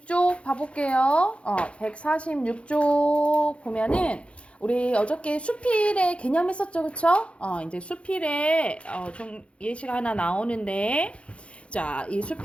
봐볼게요. 146쪽 보면은 우리 어저께 수필의 개념 했었죠, 그쵸? 이제 수필에 좀 예시가 하나 나오는데, 자, 이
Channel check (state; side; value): late; right; 0.060 ms